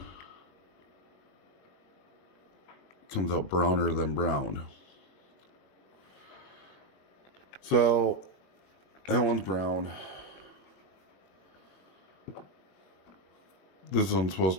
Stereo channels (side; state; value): right; late; 21 ms